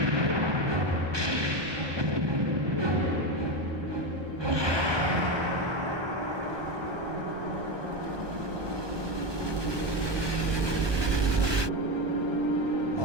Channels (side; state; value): left; late; 1.2 ms